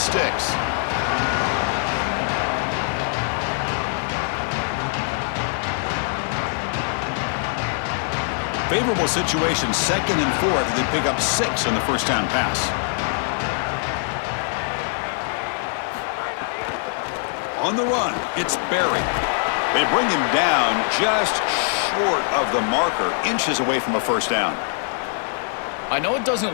Favorable situation, 2nd and 4. They pick up 6 on the first down pass. On the run, it's Berry. They bring him down just short of the marker, inches away from a first down. I know it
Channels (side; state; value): right; silent; digital silence